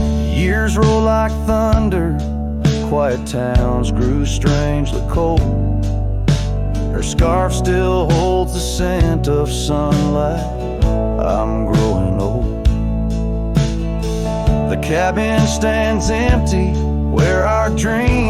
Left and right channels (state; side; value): identical; both; correlation 1.00